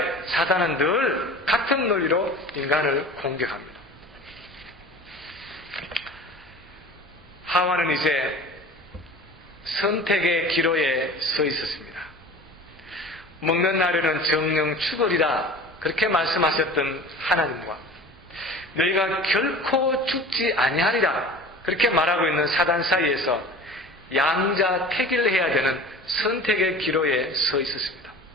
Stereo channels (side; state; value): both; normal; correlation 0.39